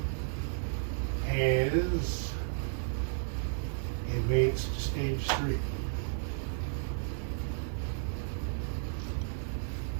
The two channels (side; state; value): left; silent; 56 dB below the other